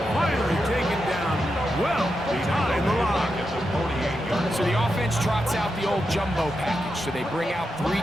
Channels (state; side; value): normal; both; correlation 0.87